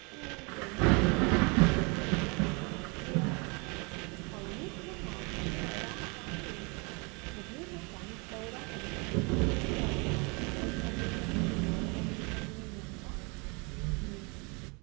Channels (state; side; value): quieter; left; 31.0 dB